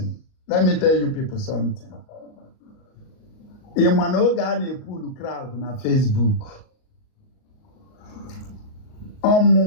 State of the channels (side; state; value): right; late; 38 ms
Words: Let me tell you people something. In one organ, a pool crowd na Facebook.